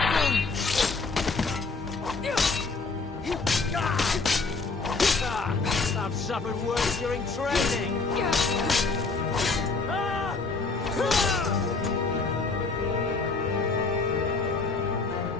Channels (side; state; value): right; quieter; 4.1 dB